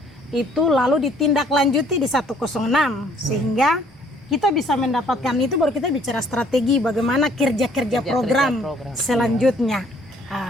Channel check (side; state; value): both; normal; correlation 0.61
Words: itu lalu ditindaklanjuti di 106, sehingga kita bisa mendapatkan itu, baru kita bicara strategi bagaimana kerja program selanjutnya